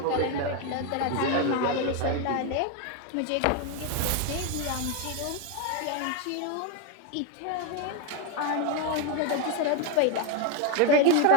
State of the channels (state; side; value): different; both; correlation 0.02